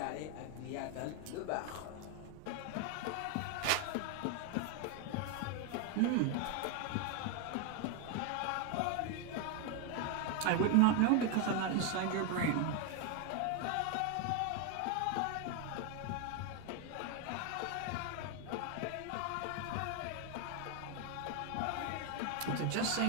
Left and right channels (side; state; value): both; different; correlation 0.01